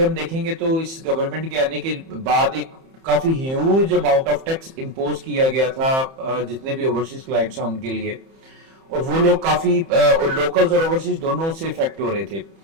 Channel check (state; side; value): late; left; 30 ms